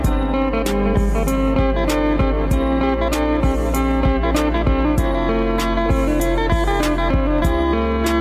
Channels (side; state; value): both; identical; correlation 1.00